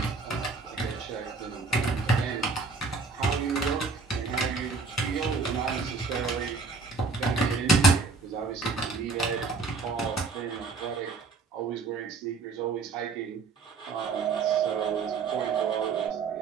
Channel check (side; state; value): left; quieter; 4.3 dB